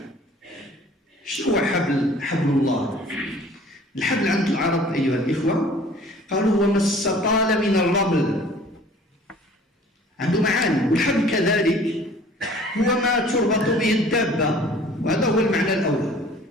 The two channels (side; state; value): both; normal; correlation 0.50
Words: شنو هو حبل الله؟ الحبل عند العرب أيها الإخوة قالوا هو ما استطال من الرمل، عنده معاني. والحبل كذلك هو ما تربط به الدابة، وهذا هو المعنى الأول.